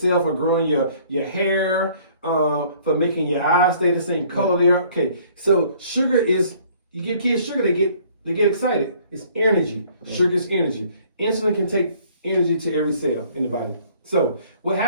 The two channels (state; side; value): inverted; both; correlation -0.58